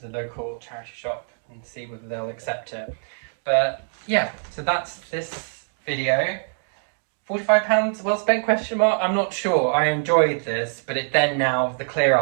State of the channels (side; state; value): left; silent; 56 dB below the other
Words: the local charity shop and see whether they'll accept it. But yeah, so that's this video. £45 well spent, question mark? I'm not sure. I enjoyed this, but it then now, the clear